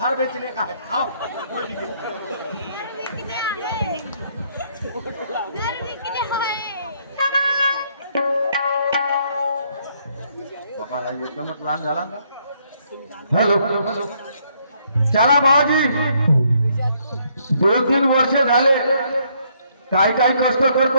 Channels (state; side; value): inverted; both; correlation -0.70